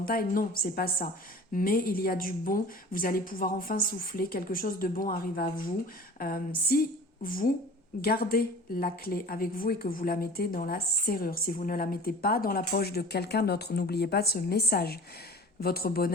Non, c'est pas ça. Mais il y a du bon, vous allez pouvoir enfin souffler, quelque chose de bon arrive à vous. Si vous gardez la clé avec vous et que vous la mettez dans la serrure, si vous ne la mettez pas dans la poche de quelqu'un d'autre, n'oubliez pas ce message. Votre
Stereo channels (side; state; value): both; normal; correlation 0.42